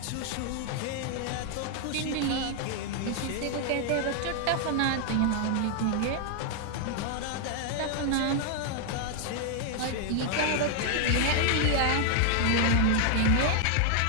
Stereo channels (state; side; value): different; both; correlation 0.00